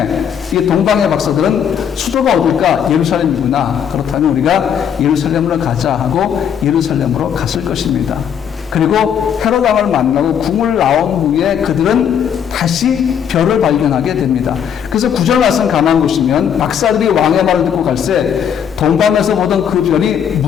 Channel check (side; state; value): right; quieter; 8.4 dB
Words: 이 동방의 박사들은 수도가 어딜까? 예루살렘이구나. 그렇다면 우리가 예루살렘으로 가자 하고 예루살렘으로 갔을 것입니다. 그리고 헤롯 왕을 만나고 궁을 나온 후에 그들은 다시 별을 발견하게 됩니다. 그래서 9절 말씀 가만 보시면 박사들이 왕의 말을 듣고 갈새 동방에서 보던 그 별이